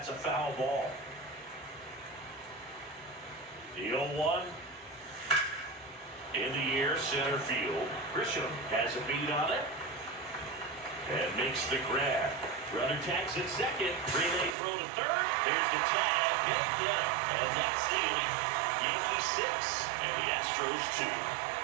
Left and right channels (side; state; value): left; drops out; at 14.6 s